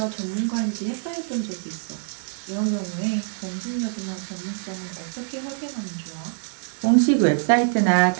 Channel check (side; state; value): left; silent; 62 dB below the other